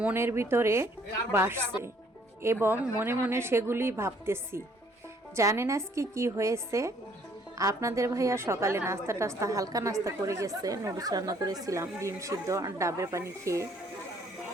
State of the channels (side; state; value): both; normal; correlation 0.63